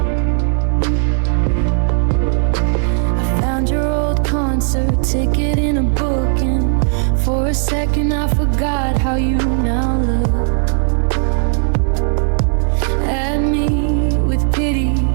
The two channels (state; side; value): silent; left; 62 dB below the other